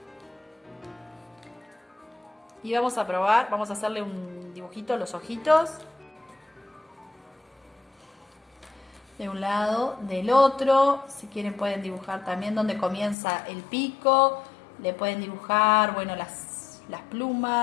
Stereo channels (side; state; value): right; drops out; at 13.2 s